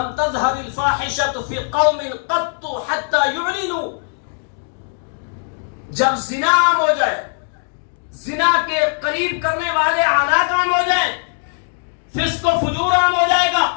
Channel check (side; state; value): right; silent; 61 dB below the other